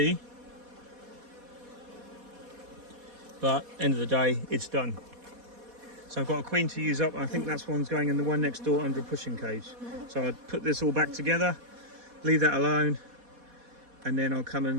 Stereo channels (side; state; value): left; late; 4.2 ms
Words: But end of the day, it's done. So I've got a queen to use up, and I think that's one's going in the one next door under a pushing cage. So I'll put this all back together, leave that alone, and then I'll come